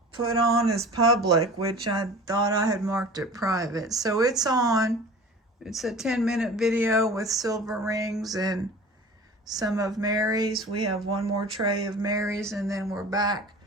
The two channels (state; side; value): normal; both; correlation 0.40